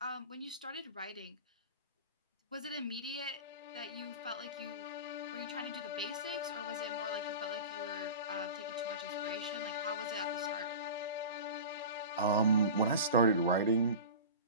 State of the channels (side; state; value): both; inverted; correlation -0.33